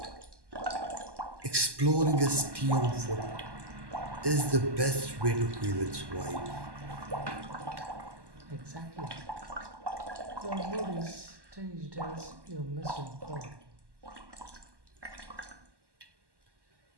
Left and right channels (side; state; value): left; late; 1.1 ms